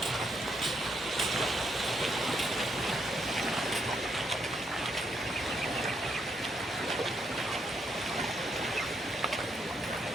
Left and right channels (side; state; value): both; normal; correlation 0.77